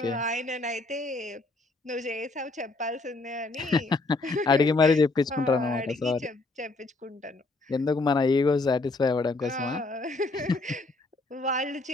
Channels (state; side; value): quieter; right; 3.2 dB